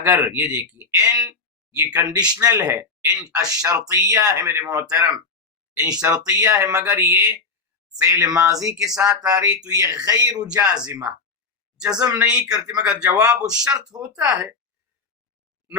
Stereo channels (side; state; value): right; quieter; 4.4 dB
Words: یہ دیکھیے ان یہ کنڈیشنل ہے، ان الشرطیہ ہے میرے محترم، ان شرطیہ ہے، مگر یہ فعل ماضی کے ساتھ آ رہی تو یہ غیر جازمہ، جزم نہیں کرتی مگر جواب الشرط ہوتا ہے،